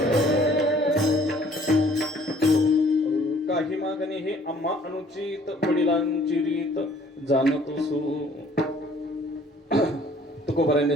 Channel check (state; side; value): normal; both; correlation 0.57